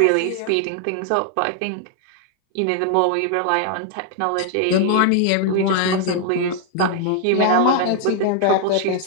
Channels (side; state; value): both; different; correlation 0.00